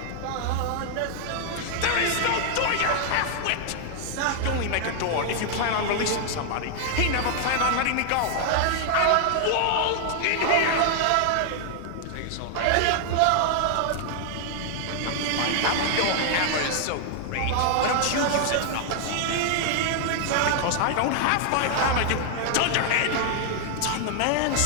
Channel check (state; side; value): different; both; correlation 0.00